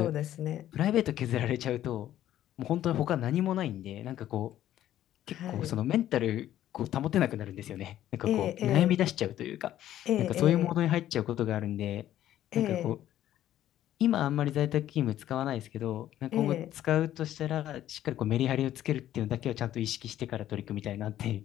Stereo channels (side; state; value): right; quieter; 12.4 dB